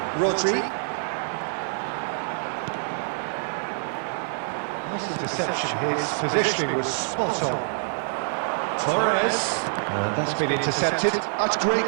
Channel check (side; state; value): left; silent; digital silence